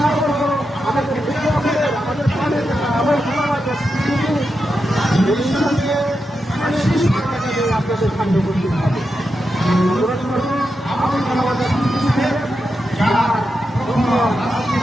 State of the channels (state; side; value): normal; both; correlation 0.87